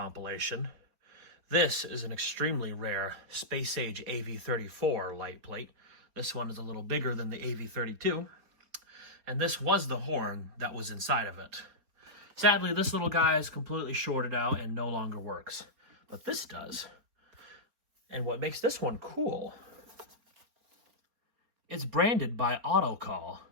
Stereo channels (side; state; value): left; late; 4.3 ms